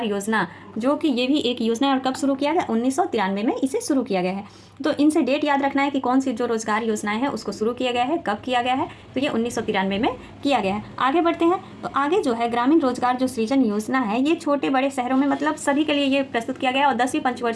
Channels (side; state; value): both; identical; correlation 1.00